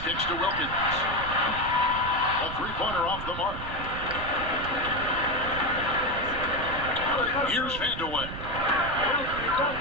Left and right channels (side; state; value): right; noise; rumble, 9 dB below the sound